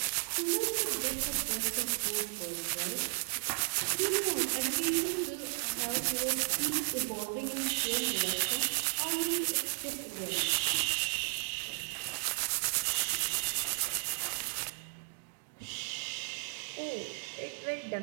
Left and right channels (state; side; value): silent; left; 55 dB below the other